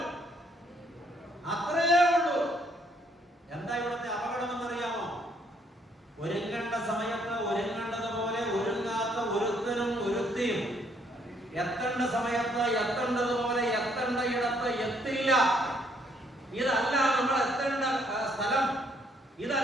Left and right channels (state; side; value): normal; both; correlation 0.68